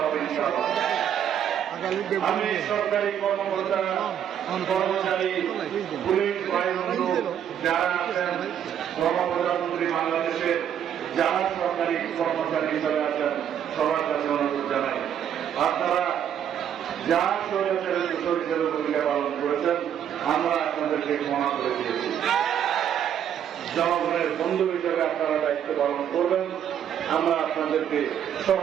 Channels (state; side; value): quieter; left; 9.3 dB